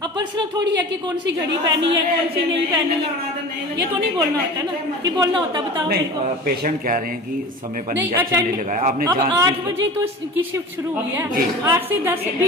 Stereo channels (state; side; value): normal; both; correlation 0.36